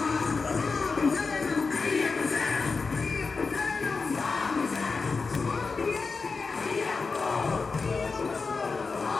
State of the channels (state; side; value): quieter; right; 4.5 dB